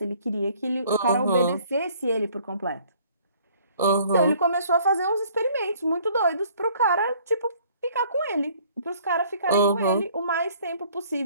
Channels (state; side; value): inverted; both; correlation -0.58